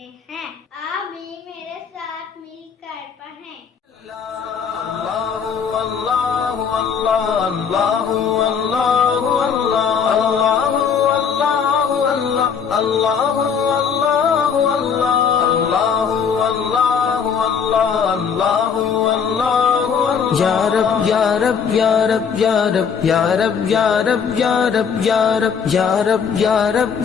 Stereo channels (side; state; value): right; quieter; 6.7 dB